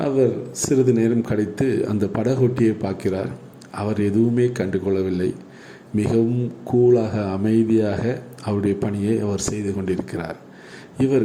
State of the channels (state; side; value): identical; both; correlation 1.00